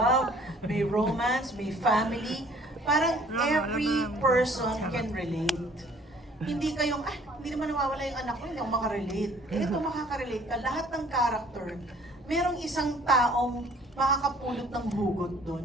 may romance, may family. Parang every person can relate. Hindi kayong, hindi naman nawawala yung anak ko, hindi ako makarelate. Ito makakarelate ka. Lahat ng character, merong isang taong makakapulot ng hugot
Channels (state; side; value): normal; both; correlation 0.56